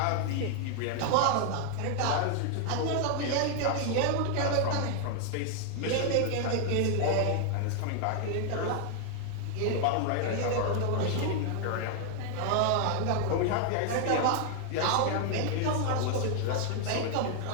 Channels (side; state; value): both; different; correlation 0.00